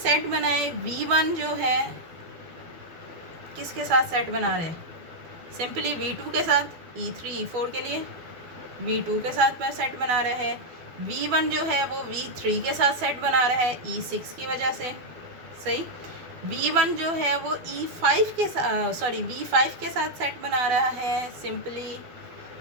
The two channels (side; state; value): left; late; 12 ms